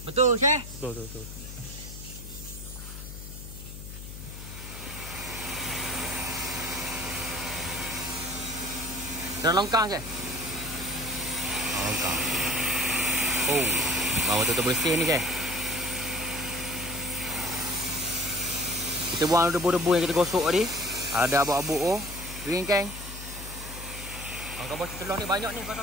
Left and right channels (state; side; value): noise; left; hum, 11 dB below the sound